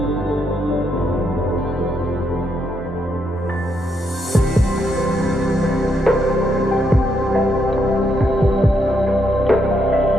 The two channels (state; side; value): normal; both; correlation 0.78